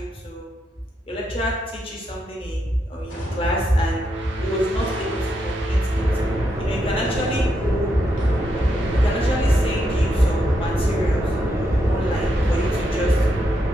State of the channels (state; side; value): normal; both; correlation 0.81